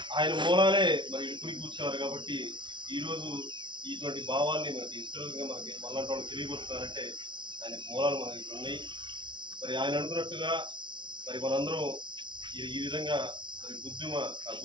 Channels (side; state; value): left; late; 0.23 ms